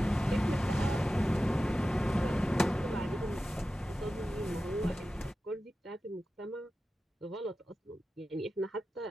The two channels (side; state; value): both; normal; correlation 0.93